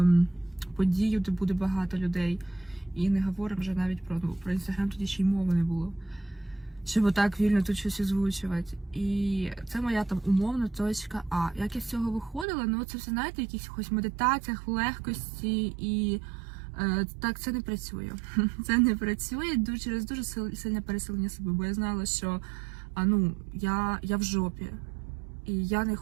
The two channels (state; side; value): drops out; left; at 12.5 s